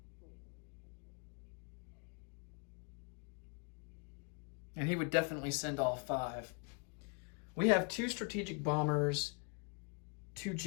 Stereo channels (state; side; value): quieter; right; 36.2 dB